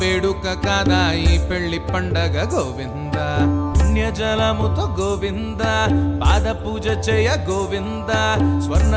వేడుక కాదా ఈ పెళ్లి పండగ గోవింద పుణ్యజలముతో గోవింద పాద పూజ చేయ గోవింద స్వర్ణ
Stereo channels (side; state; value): both; identical; correlation 1.00